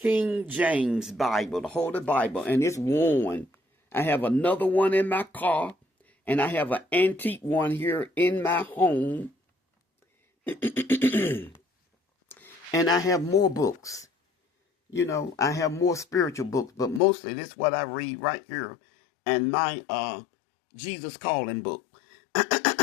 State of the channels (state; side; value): drops out; right; at 17.0 s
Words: James Bible, the Holy Bible, and it's worn. I have another one in my car, and I have an antique one here in my home. And I have more books. You know, I have more spiritual books, but mostly this is what I read right here and my Jesus Calling book.